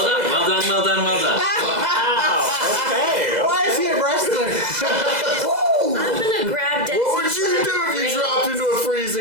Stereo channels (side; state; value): left; late; 2.0 ms